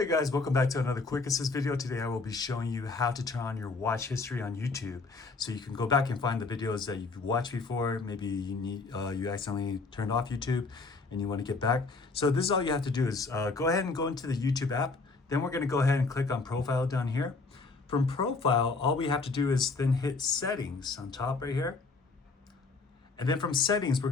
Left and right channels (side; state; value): right; quieter; 3.9 dB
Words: guys, welcome back to another quick assist video. Today I will be showing you how to turn on your watch history on YouTube. So you can go back and find the videos that you've watched before. Maybe you accidentally turned off YouTube and you want to get back. So this is all you have to do is go ahead and go into the YouTube app. Then we're going to go ahead and click on profile down here. From profile, all we have to do is then hit settings on top right here. And then from settings, we're